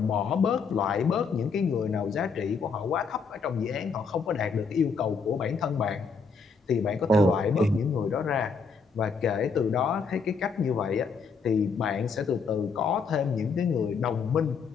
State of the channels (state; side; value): quieter; right; 5.2 dB